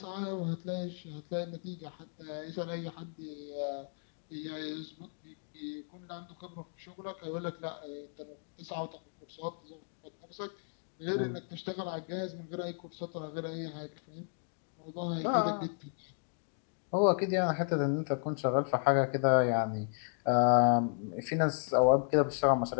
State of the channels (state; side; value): silent; right; digital silence